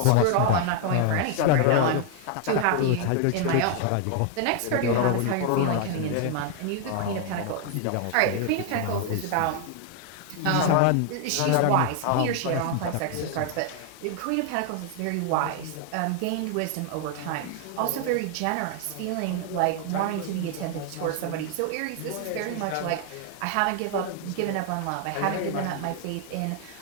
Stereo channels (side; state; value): both; different; correlation 0.00